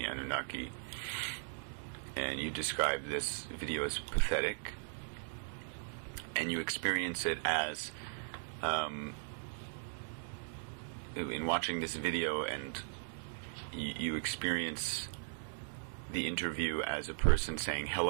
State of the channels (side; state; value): left; silent; digital silence